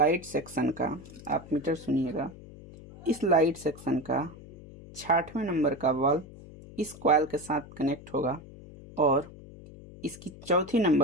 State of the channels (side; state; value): left; noise; hum, 17 dB below the sound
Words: सेक्शन का, आप मीटर सुनिएगा, इस लाइट सेक्शन का 66वें नंबर का बल्ब इस कॉइल के साथ कनेक्ट होगा, और इसकी चौथी